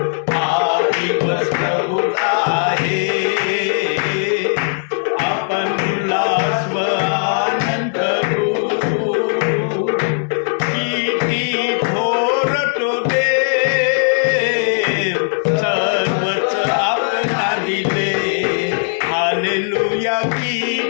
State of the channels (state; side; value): silent; right; digital silence